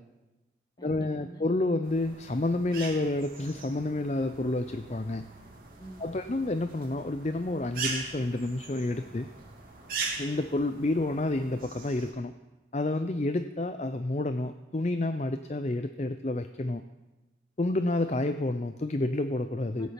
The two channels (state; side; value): normal; both; correlation 0.66